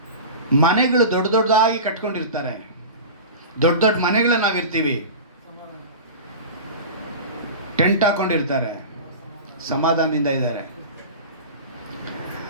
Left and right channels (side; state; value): both; inverted; correlation -0.32